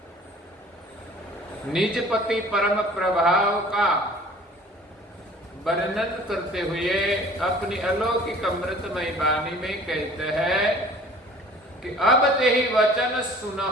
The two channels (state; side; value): normal; both; correlation 0.48